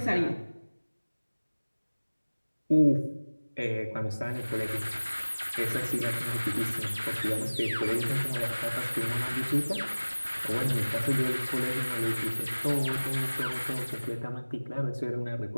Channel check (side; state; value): both; inverted; correlation -1.00